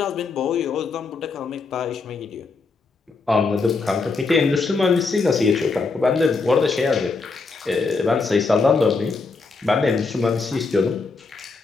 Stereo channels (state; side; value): quieter; right; 4.2 dB